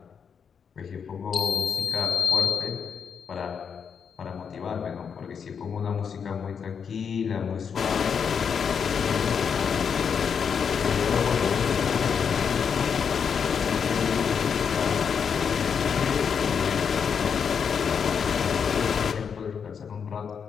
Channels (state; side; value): quieter; right; 6.8 dB